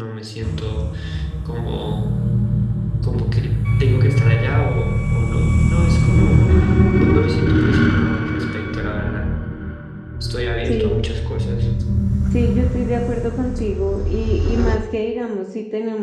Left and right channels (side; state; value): both; identical; correlation 1.00